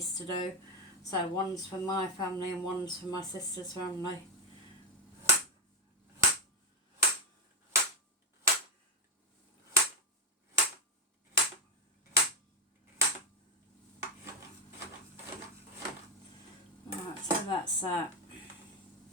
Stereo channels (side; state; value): both; normal; correlation 0.08